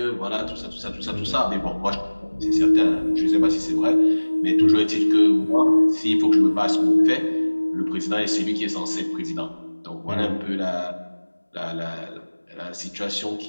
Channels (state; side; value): inverted; both; correlation -1.00